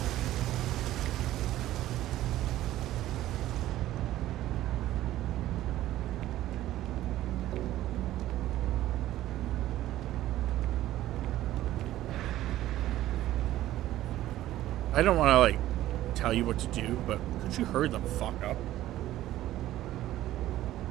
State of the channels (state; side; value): quieter; left; 14.3 dB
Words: I don't want to, like, tell you what to do, but could you hurry the fuck up?